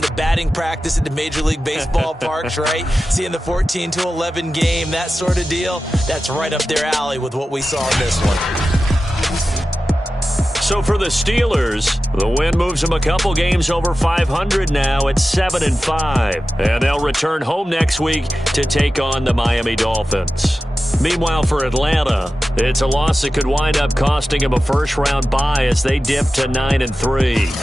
to batting practice at the Major League Baseball parks, right? Seeing the 14-11 game, that sort of deal. That's right up their alley with what we saw in this one. So for the Steelers, the win moves them a couple games over 500 now at 7-5. And they'll return home next week to take on the Miami Dolphins. Meanwhile, for Atlanta, it's a loss that could wind up costing them a first-round bye as they dip to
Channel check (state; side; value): normal; both; correlation 0.94